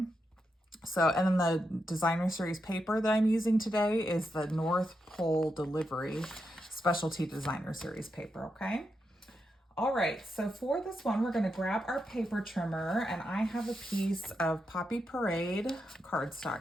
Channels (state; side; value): normal; both; correlation 0.85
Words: So, and then the designer series paper that I'm using today is the North Pole Delivery Specialty Designer Series paper, okay? All right, so for this one, we're gonna grab our paper trimmer, and I have a piece of Poppy Parade